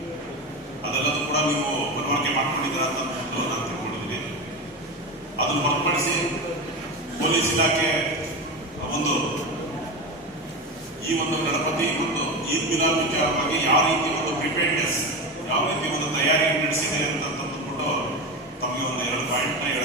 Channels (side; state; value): both; normal; correlation 0.21